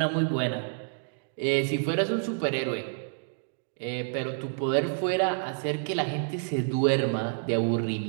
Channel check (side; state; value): left; silent; digital silence